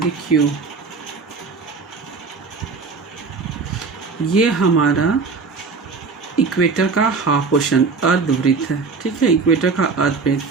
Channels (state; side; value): quieter; left; 4.7 dB